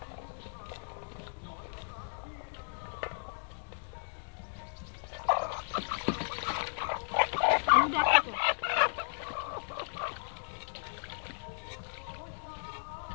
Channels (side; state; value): right; silent; digital silence